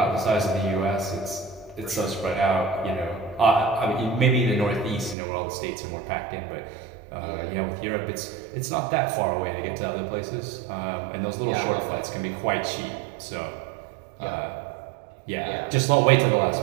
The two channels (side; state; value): left; drops out; at 5.2 s